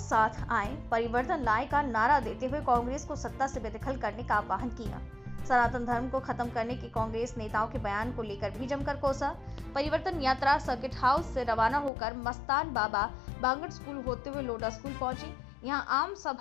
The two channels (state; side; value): drops out; right; at 11.9 s